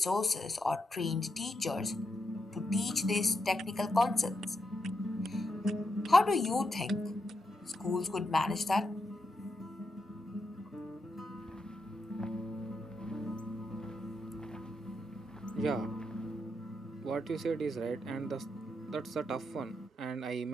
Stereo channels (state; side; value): normal; both; correlation 0.84